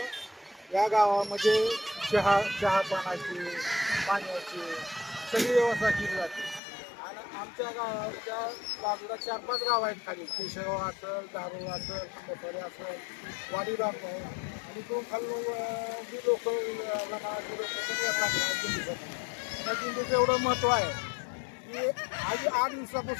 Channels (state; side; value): drops out; right; at 6.6 s